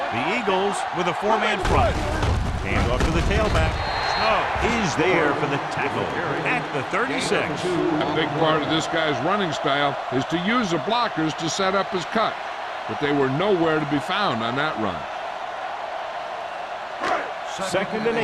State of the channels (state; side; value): identical; both; correlation 1.00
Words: The Eagles with a 4-man front. Hand off to the tailback. Snow is there for the tackle at the 36. A big part of this guy's running style is to use the blockers to set up his cut, but they were nowhere to be found on that run. 2nd and